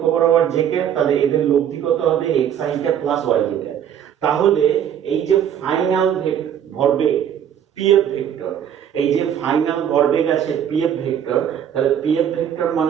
বরাবর জে ক্যাপ, তাহলে এদের লব্ধি কত হবে x i cap plus y j cap. তাহলে এই যে ফাইনাল ভরবেগ পিএফ ভেক্টর, এই যে ফাইনাল ভরবেগ আছে পিএফ ভেক্টর, তাহলে পিএফ ভেক্টর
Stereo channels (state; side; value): quieter; left; 9.4 dB